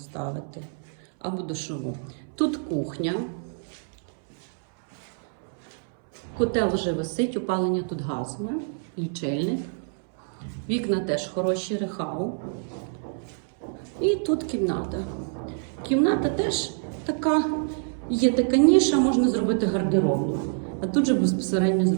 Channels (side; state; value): left; silent; 61 dB below the other